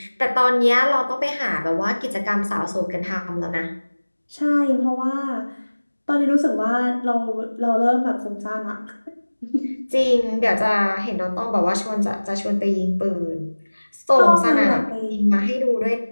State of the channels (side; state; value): both; inverted; correlation -1.00